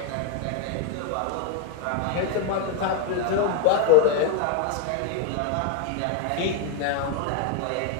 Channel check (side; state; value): both; different; correlation 0.01